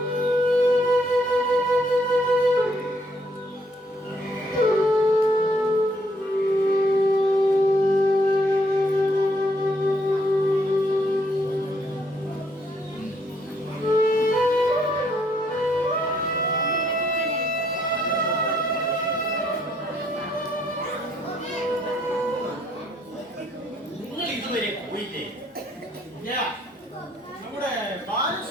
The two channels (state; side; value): normal; both; correlation 0.70